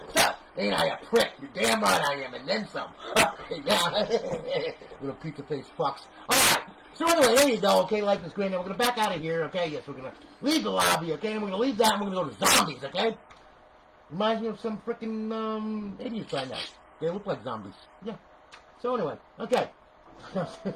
So, ain't I a prick? You're damn right I am, and then some. Little pizza face fucks. Alright, so anyway, there you go, okay, like this grand. Now we're gonna back out of here, okay? Yes, we're gonna leave the lobby, okay? And we're gonna leave that and we're gonna go to zombies, okay? Reminds me of some frickin' idiots I know. They look like zombies. Yeah. So anyway, okay.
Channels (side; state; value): both; identical; correlation 1.00